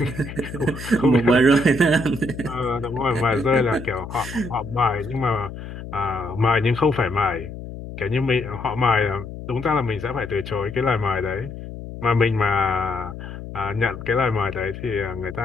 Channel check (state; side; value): noise; left; hum, 11 dB below the sound